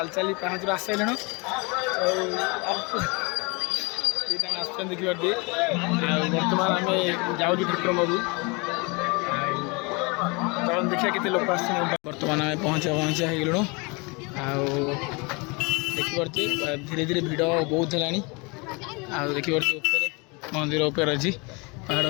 चली पाँच आसलु देखिए बर्तमान आम जाऊँ ठाकुर बाबू चल देखिए केते लोक बर्तमान आम पहुँचा होगलु देखिपे धीरे धीरे भिड़ बहुत है देखिए मंदिर उपर अच्छी पहाड़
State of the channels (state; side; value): quieter; right; 28.8 dB